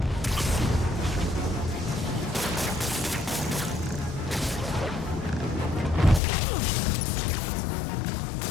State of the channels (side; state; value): right; drops out; at 6.2 s